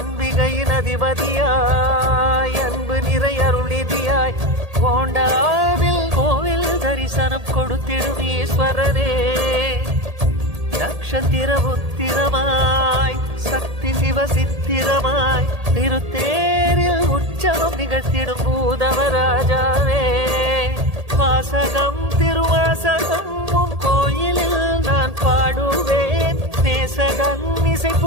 அதிபதியாய் அன்பு நிறை அருளிதியாய் கோண்டாவில் கோவில் தரிசனம் கொடுத்திடும் ஈஸ்வரனே நக்ஷத்திர உத்திரமாய் சக்தி சிவ சித்திரமாய் திருத்தேரில் உற்சவம் நிகழ்த்திடும் பூதவராஜாவே வாசகம் திருவாசகம் உன் கோயிலில் நான் பாடுவேன் நேசகன் இசை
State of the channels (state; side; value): late; left; 1.8 ms